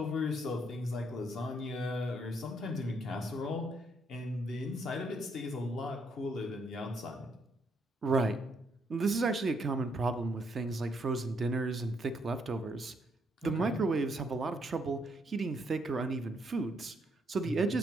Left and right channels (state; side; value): normal; both; correlation 0.73